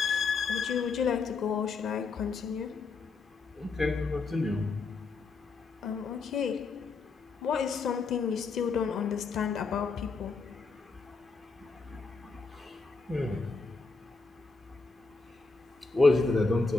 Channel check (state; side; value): quieter; right; 4.2 dB